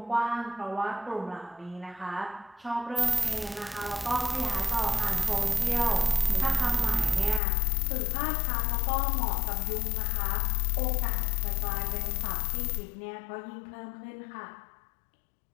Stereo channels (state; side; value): drops out; right; at 7.4 s